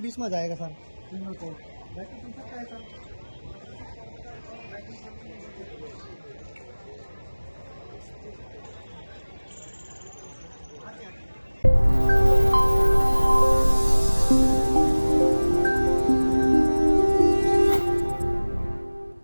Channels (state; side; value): inverted; both; correlation -1.00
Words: में जाएगा सर तीनों को बैटरी है सर।